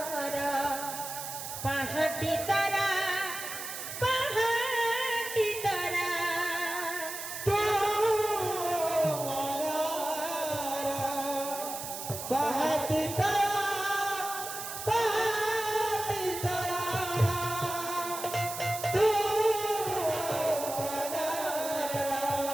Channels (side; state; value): right; noise; hiss, 8 dB below the sound